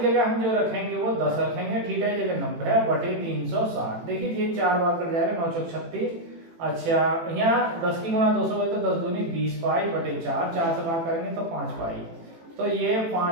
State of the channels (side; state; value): left; late; 18 ms